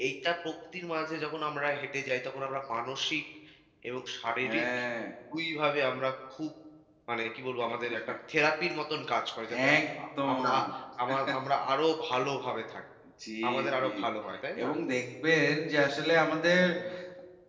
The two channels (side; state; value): both; identical; correlation 1.00